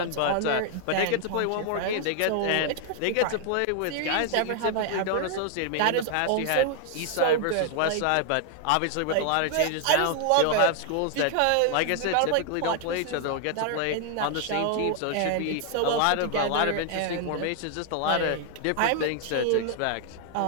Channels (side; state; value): both; different; correlation 0.00